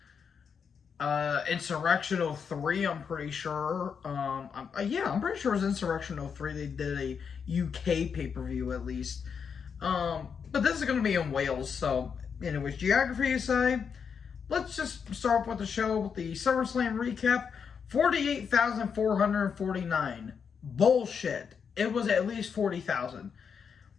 Insurrection 03, I'm pretty sure. Yeah, I'm pretty sure it was Insurrection 03. They did a UK pay-per-view at least. But this is going to be in Wales, so anyways, geography aside, let's just start with the show with the Summerslam Recap. 48,449. Bullshit. It was at least 40,000.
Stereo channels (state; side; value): quieter; right; 6.6 dB